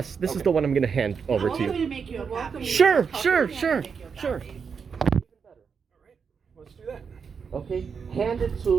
this is Okay. the one I'm going to hand over I'm to going you. to make you a copy. Sure. Let's Let's do that. Okay, handed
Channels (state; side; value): quieter; left; 6.1 dB